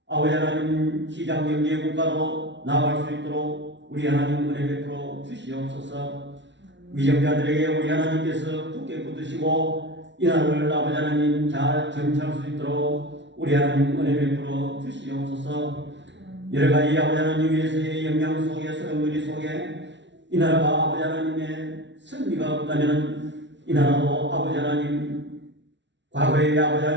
아버지 하나님 시장경제의 국가로 나아갈 수 있도록 우리 하나님 은혜 베풀어 주시옵소서. 위정자들에게 우리 하나님께서 굳게 붙드시고 이 나라를 아버지 하나님 잘 정치할 수 있도록 우리 하나님 은혜 베풀어 주시옵소서. 여러 가지 아버지 하나님 위해서의 영향 속에 소용돌이 속에 이 나라가 아버지 하나님의 승리가 없다면 이 나라도 아버지 하나님 과거의 아버지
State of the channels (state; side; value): late; left; 0.52 ms